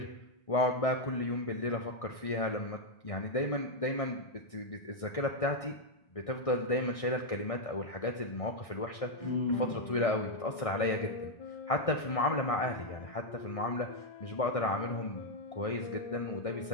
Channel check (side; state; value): right; late; 1.6 ms